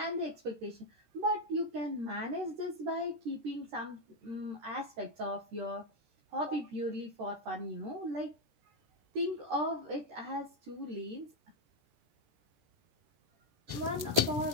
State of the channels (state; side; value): late; left; 13 ms